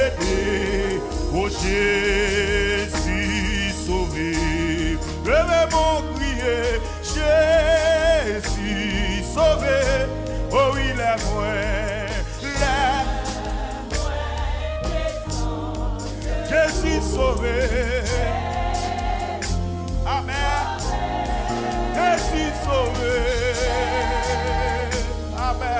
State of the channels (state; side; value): identical; both; correlation 1.00